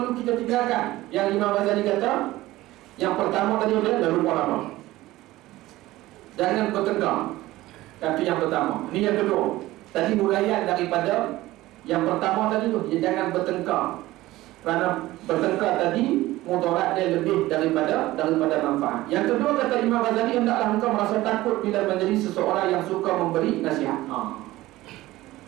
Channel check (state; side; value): quieter; left; 17.3 dB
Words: kita tinggalkan, yang Imam Ghazali kata, yang pertama tadi dah lupa apa? Jangan bertengkar. Kata yang pertama. Ini yang kedua. Tadi huraian daripada yang pertama tadi tu, jangan bertengkar. Kerana bertengkar tadi mudarat dia lebih daripada manfaat. Yang kedua, kata Imam Ghazali, hendaklah engkau merasa takut bila menjadi seseorang yang suka memberi nasihat.